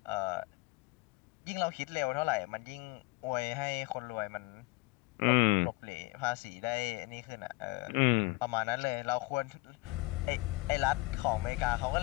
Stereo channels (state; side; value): quieter; right; 22.9 dB